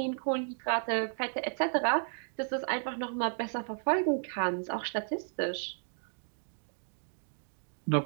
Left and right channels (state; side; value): silent; left; 55 dB below the other